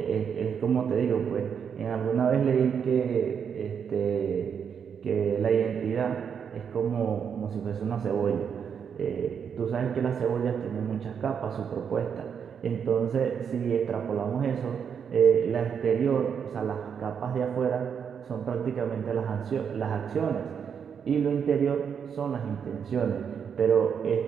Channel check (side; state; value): left; quieter; 7.2 dB